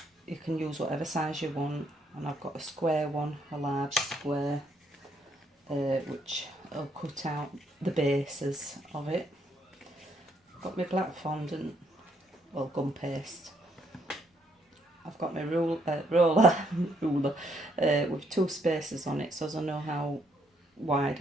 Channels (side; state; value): both; normal; correlation 0.72